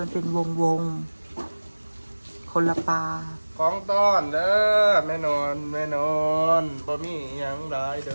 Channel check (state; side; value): inverted; both; correlation -1.00